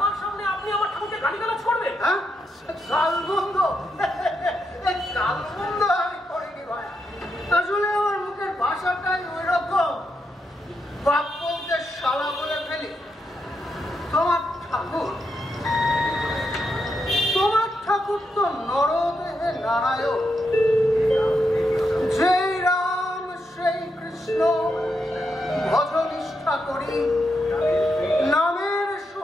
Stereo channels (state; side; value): normal; both; correlation 0.83